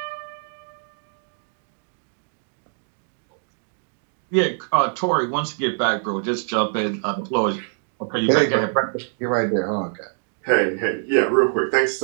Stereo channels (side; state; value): left; silent; 63 dB below the other